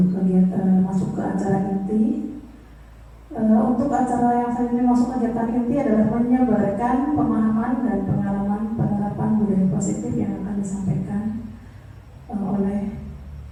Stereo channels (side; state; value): both; identical; correlation 1.00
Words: kegiatan masuk ke acara inti. Untuk acara yang selanjutnya masuk kegiatan inti adalah menyebarkan pemahaman dan pengalaman penerapan budaya positif yang akan disampaikan oleh